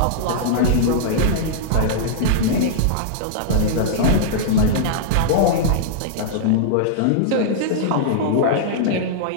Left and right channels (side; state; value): both; different; correlation -0.02